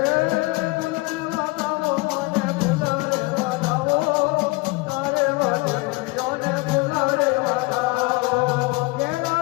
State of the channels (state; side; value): quieter; right; 24.4 dB